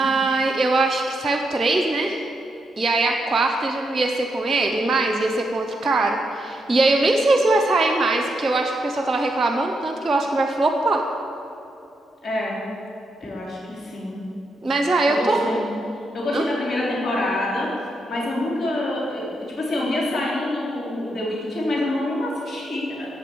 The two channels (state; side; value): normal; both; correlation 0.82